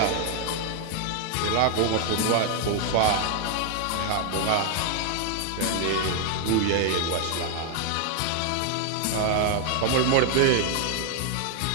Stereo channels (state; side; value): different; both; correlation 0.00